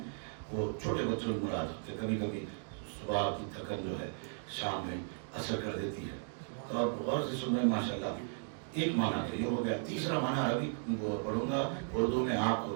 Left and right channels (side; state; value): left; silent; 54 dB below the other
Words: وہ چھوٹے بچوں کی مراد ہوتے، کبھی کبھی صبح کی تھکن جو ہے شام میں اثر کر دیتی ہے، تو آپ غور سے سن رہے ہیں ماشاءاللہ۔ ایک معنی تو یہ ہو گیا، تیسرا معنی عربی پڑھوں گا اردو میں آپ